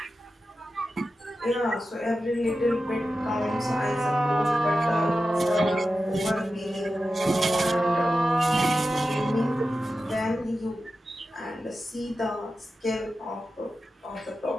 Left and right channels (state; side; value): normal; both; correlation 0.92